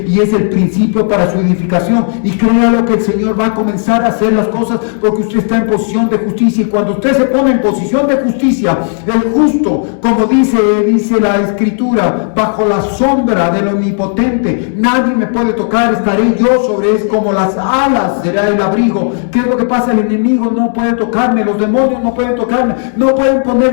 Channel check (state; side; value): silent; right; 57 dB below the other